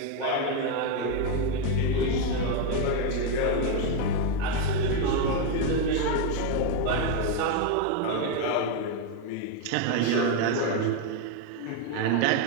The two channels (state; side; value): different; both; correlation 0.02